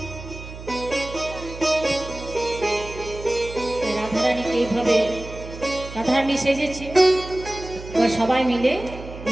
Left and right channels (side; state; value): right; noise; hum, 13 dB below the sound